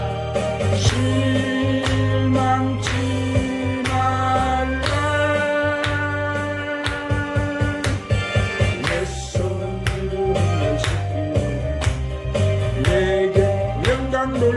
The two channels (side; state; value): both; identical; correlation 1.00